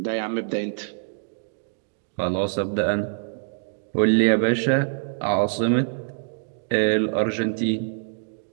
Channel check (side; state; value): left; silent; digital silence